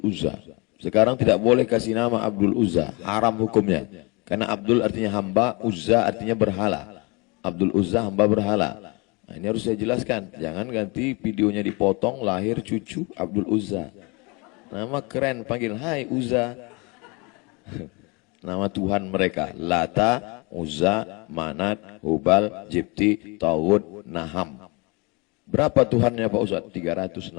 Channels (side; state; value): right; quieter; 28.8 dB